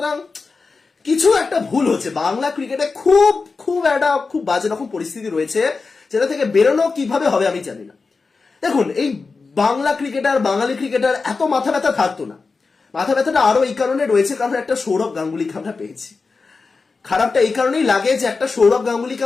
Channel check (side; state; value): right; quieter; 4.3 dB